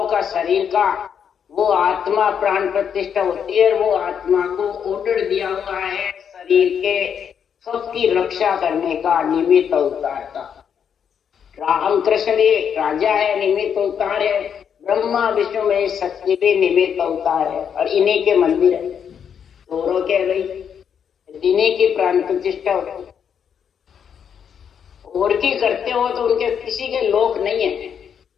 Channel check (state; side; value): quieter; right; 7.8 dB